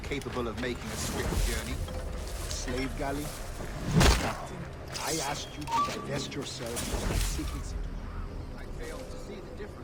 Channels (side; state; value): both; identical; correlation 1.00